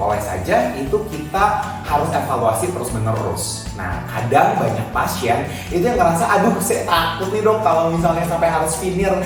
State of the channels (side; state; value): both; identical; correlation 1.00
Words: saja. Itu kita harus evaluasi terus menerus. Nah, kadang banyak pasien itu yang ngerasa, aduh saya takut nih dok kalau misalnya sampai harus veneer.